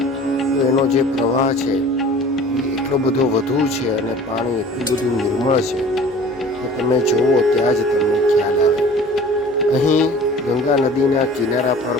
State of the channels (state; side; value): normal; both; correlation 0.45